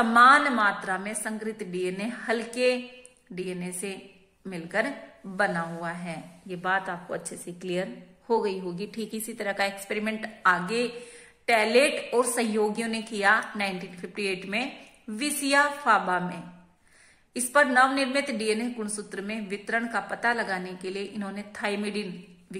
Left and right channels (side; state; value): both; identical; correlation 1.00